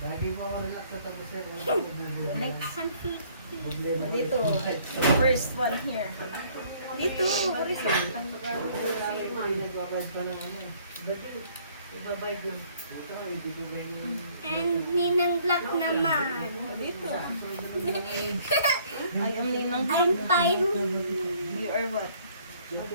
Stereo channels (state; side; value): inverted; both; correlation -0.61